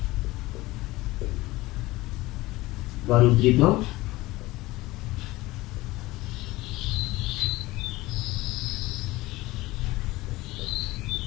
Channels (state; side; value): quieter; right; 19.4 dB